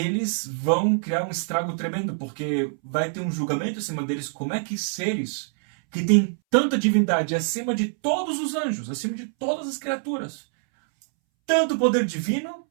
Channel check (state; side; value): silent; left; 62 dB below the other